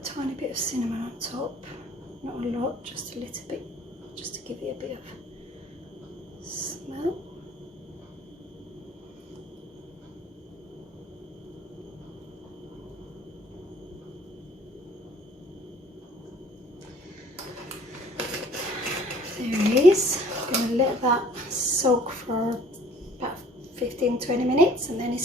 a tiny bit of cinnamon on top, not a lot, just a little bit, just to give it a bit of smell. There it is. I'm going to let that soak for about 15-20 minutes and then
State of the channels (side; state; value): both; normal; correlation 0.54